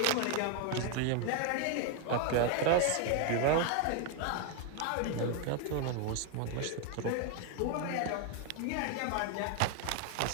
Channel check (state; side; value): different; both; correlation 0.01